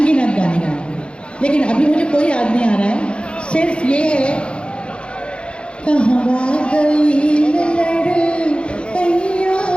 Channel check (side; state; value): right; late; 0.056 ms